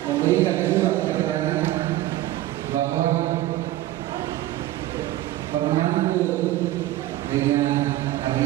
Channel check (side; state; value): left; quieter; 15.6 dB